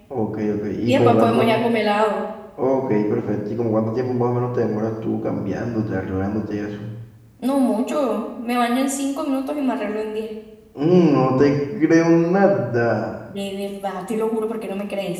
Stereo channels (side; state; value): both; identical; correlation 1.00